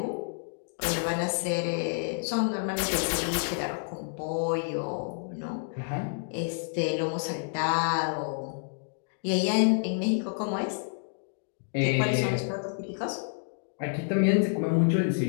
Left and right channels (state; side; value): silent; right; digital silence